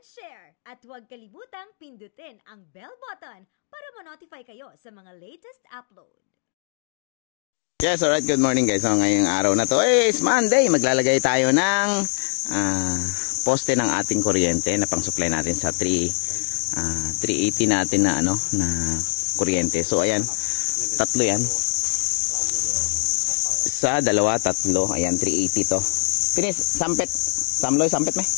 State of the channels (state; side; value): silent; right; 61 dB below the other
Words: share. At huwag kalimutang pindutin ang bell button para ma-notify kayo sa mga latest upload. Yes, alright. Good morning guys. So, ngayong araw na to is Monday. Maglalagay tayo ng poste ng ating kuryente na pang-supply natin sa 380 natin na na kuryente. So ayan, tatlo yan. Isa, dalawa, tatlo. Ayan, 380 to. Tinis, sampet. Samloy, sampet may?